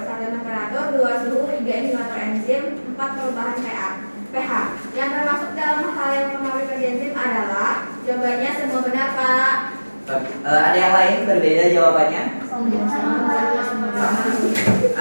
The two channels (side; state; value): both; inverted; correlation -1.00